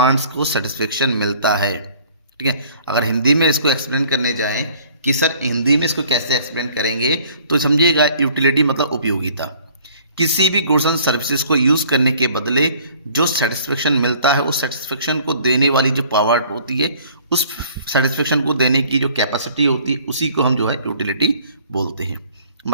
को सेटिस्फेक्शन मिलता है। ठीक है, अगर हिंदी में इसको एक्सप्लेन करने जाएं कि सर हिंदी में इसको कैसे एक्सप्लेन करेंगे, तो समझिएगा यूटिलिटी मतलब उपयोगिता। किसी भी गुड्स एंड सर्विसेज को यूज करने के बदले जो सेटिस्फेक्शन मिलता है, उस सेटिस्फेक्शन को देने वाली जो पावर होती है, उस सेटिस्फेक्शन को देने की जो कैपेसिटी होती है, उसी को हम जो है यूटिलिटी बोलते हैं।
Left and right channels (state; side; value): inverted; both; correlation -0.55